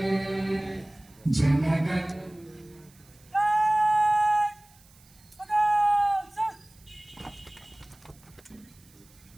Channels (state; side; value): noise; right; hiss, 28 dB below the sound